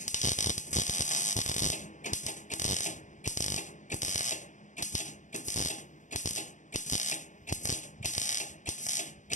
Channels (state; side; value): late; right; 0.36 ms